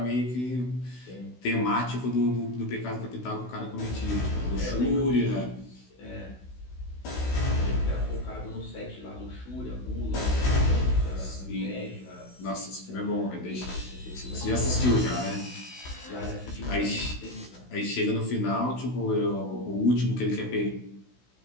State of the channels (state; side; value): late; right; 16 ms